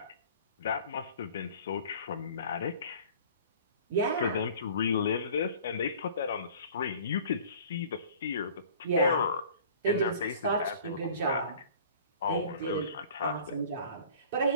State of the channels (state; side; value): inverted; both; correlation -0.47